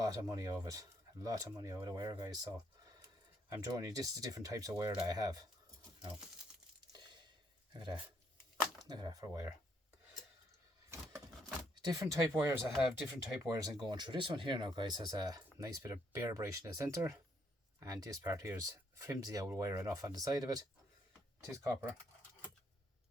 of money out of it. A lot of money out of the wire, guys. So I'm showing you just the different types of wire that I have. Now, look at that. Look at that for wire. Different type wires I have, different type wires I'm going through. This one here now, guys, has a nice bit of bare brush in the centre, and this part here is flimsy old wire enough on the side of it. It is copper.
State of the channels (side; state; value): both; normal; correlation 0.72